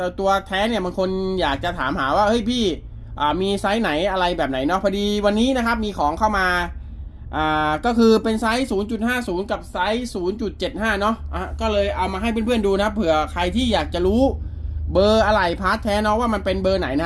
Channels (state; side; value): identical; both; correlation 1.00